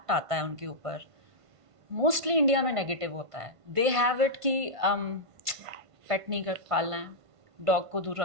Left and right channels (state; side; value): late; left; 1.5 ms